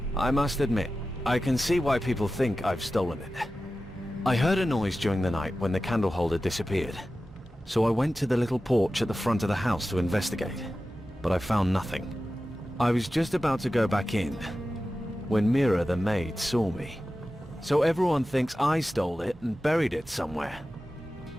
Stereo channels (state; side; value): normal; both; correlation 0.94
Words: I must admit, I can see why people think I've stolen it. I heard a noise during the night when the candle holder disappeared. So I went to the little porch at the front of the house to investigate. But I found nothing. I was just about to go back in when Mira the maid saw me. So everyone thinks I stole it and buried it somewhere.